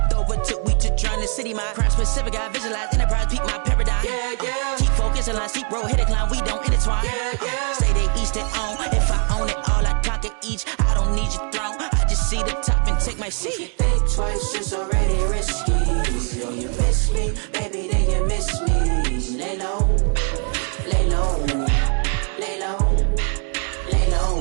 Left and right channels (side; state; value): left; quieter; 39.9 dB